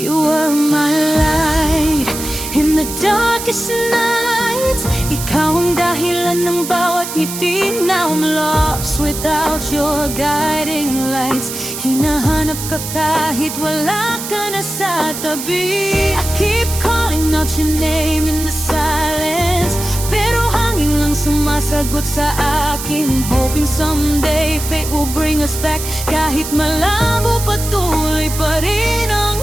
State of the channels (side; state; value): right; noise; hiss, 7 dB below the sound